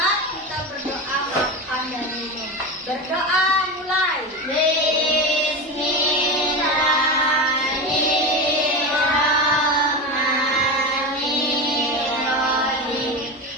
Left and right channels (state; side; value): normal; both; correlation 0.22